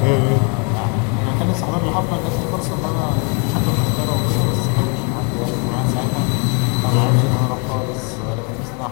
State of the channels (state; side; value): quieter; right; 35.9 dB